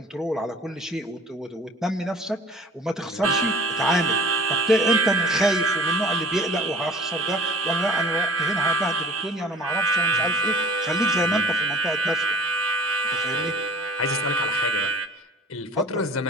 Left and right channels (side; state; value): both; normal; correlation 0.47